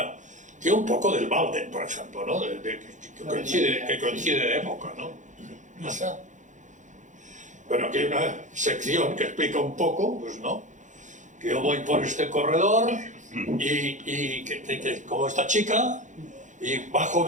tiene un poco del Walden, por ejemplo, ¿no? Que coincide de época, ¿no? ¿Pasa? Bueno, aquí hay una sección que explica un poco, pues no, que yo voy por este corredor y como esta chica, y bajo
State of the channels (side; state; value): left; late; 0.36 ms